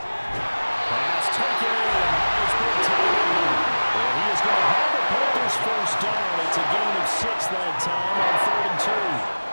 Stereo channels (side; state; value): both; inverted; correlation -1.00